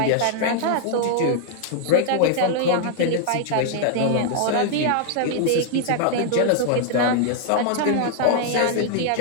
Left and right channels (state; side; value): different; both; correlation -0.01